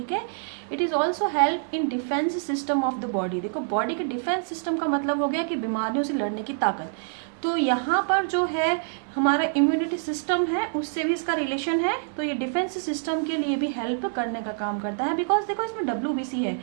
है, it is also help in defence system of the body. देखो बॉडी के डिफेंस सिस्टम का मतलब हो गया कि बीमारियों से लड़ने की ताकत। तो यहाँ पर जो है हमारा इम्यूनिटी सिस्टम है उससे भी इसका रिलेशन है, तो ये डिफेंस सिस्टम के लिए भी हेल्प करने का काम करता है। बिकॉज देखो इसमें डब्ल्यूबीसी है,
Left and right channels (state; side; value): silent; left; digital silence